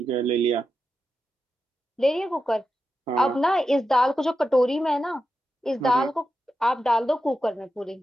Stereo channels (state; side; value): normal; both; correlation 0.89